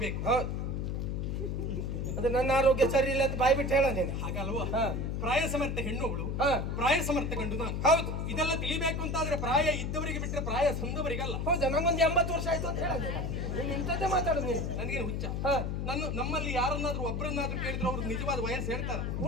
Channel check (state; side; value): noise; left; hum, 1 dB below the sound